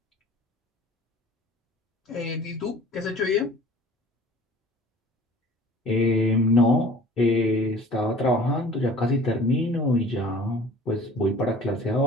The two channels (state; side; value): normal; both; correlation 0.46